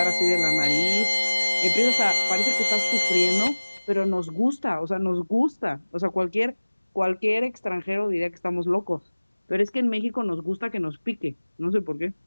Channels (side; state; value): both; inverted; correlation -1.00